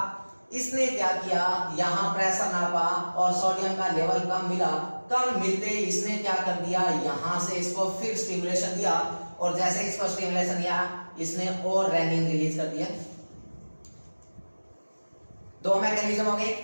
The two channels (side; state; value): both; inverted; correlation -1.00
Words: इसने क्या किया, यहाँ प्रेशर नापा और सोडियम का लेवल कम मिला। कम मिलते ही इसने क्या कर दिया, यहाँ से इसको फिर स्टिमुलेशन दिया, और जैसे इसको स्टिमुलेशन दिया इसने और रेनिन रिलीज कर दिया। दो मैकेनिज्म हो गए।